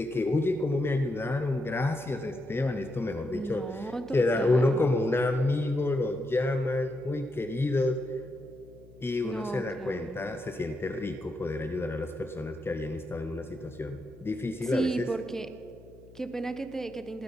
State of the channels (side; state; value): left; noise; hum, 22 dB below the sound